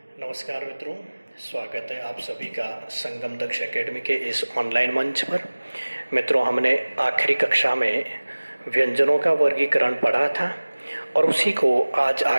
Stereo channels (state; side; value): inverted; both; correlation -1.00